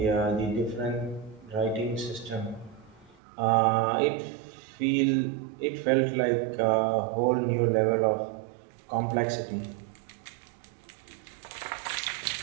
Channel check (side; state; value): left; drops out; at 3.2 s